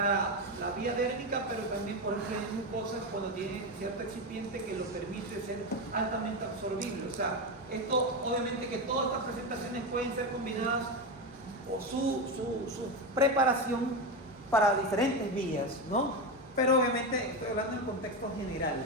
la vía dérmica, pero también, por ejemplo, en mucosas cuando tiene cierto excipiente que lo permite ser altamente absorbible. O sea, esto, obviamente que todas estas presentaciones pueden ser combinadas o su preparación para diferentes vías, ¿no? Pero obviamente estoy hablando en contexto general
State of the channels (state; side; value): normal; both; correlation 0.15